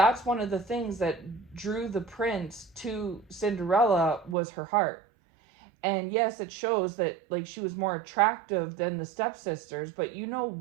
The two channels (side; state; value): left; drops out; at 4.4 s